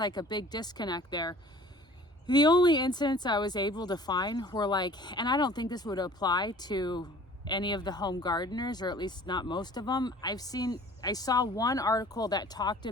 a big disconnect there. The only incidents I was able to find were like, and I don't think this would apply to any of the home gardeners, or at least not most of them. I saw one article that talked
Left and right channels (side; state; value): both; normal; correlation 0.49